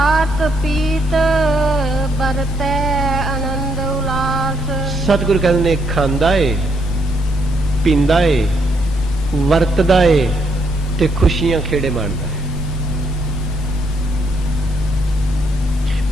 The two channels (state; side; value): normal; both; correlation 0.74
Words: पीत बरतै आनंद उल्लास। सतगुरु कहते ने खांदा है, पींदा है, वरतदा है ते खुशियां खेड़े माणदा है।